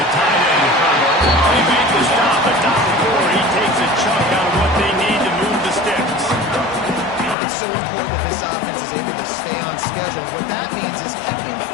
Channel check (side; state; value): right; drops out; at 7.4 s